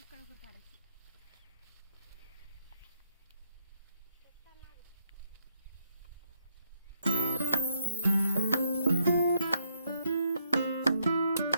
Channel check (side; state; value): both; inverted; correlation -0.76